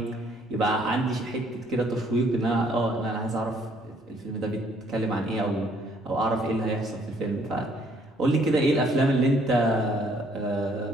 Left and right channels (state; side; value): normal; both; correlation 0.65